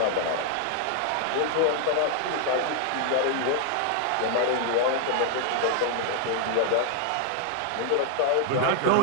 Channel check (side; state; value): both; different; correlation 0.00